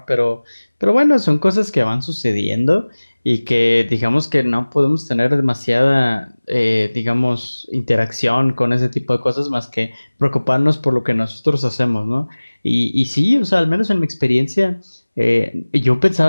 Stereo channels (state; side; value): inverted; both; correlation -1.00